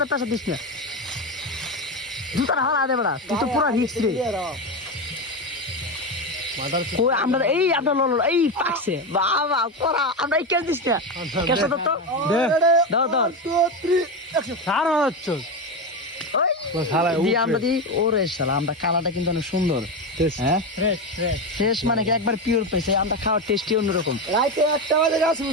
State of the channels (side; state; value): both; normal; correlation 0.15